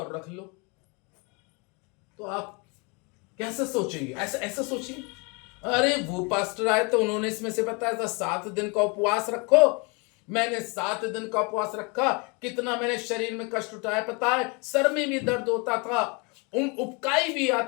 रख लो, तो आप कैसे सोचेंगे? ऐसा सोचिए, अरे वो पास्टर आए तो उन्होंने इसमें से बताया था 7 दिन का उपवास रखो, मैंने 7 दिन का उपवास रखा, कितना मैंने शरीर में कष्ट उठाया पता है, सर में भी दर्द होता था, उबकाई भी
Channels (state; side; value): quieter; right; 31.1 dB